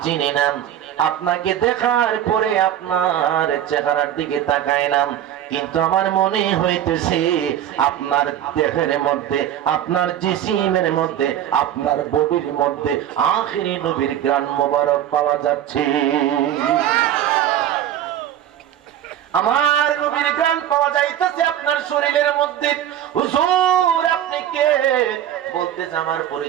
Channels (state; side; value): quieter; left; 11.0 dB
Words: চিনি না, আপনাকে দেখার পরে আপনার চেহারার দিকে তাকাইলাম, কিন্তু আমার মনে হইতেছে আপনার দেহের মধ্যে, আপনার জিসিমের মধ্যে, আপনার বডির মধ্যে আখিরি নবীর গ্রান মোবারক পাওয়া যাচ্ছে। আমার নবীর গ্রান পাওয়া যাইতেছে আপনার শরীরের মধ্যে। হুজুর আপনি কে? বলতেছে আমার